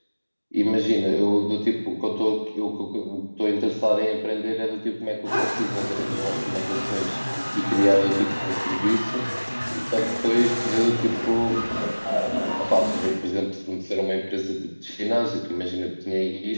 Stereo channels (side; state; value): both; inverted; correlation -1.00